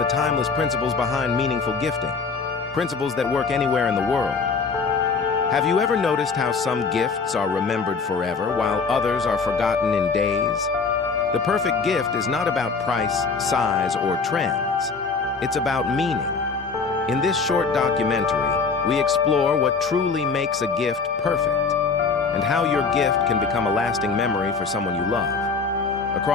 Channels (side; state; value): right; quieter; 4.8 dB